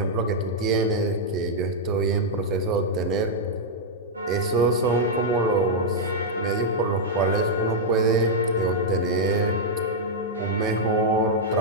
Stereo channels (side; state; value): both; normal; correlation -0.05